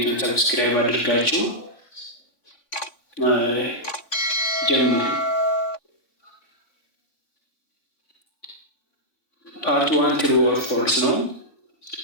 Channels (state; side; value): late; right; 3.5 ms